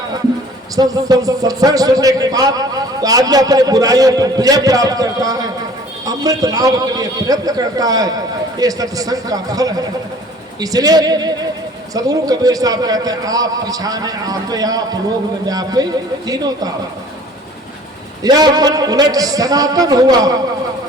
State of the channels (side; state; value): both; normal; correlation 0.50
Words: सत्संग सुनने के बाद तो आदमी अपने बुराइयों पर विजय प्राप्त करता है, अमृत लाभ के लिए प्रयत्न करता है, ये सत्संग का फल है। इसलिए सदगुरु कबीर साहब कहते हैं आप पिछाने आपे आप लोग में व्यापे तीनों ताप, या मन उलट सनातन हुआ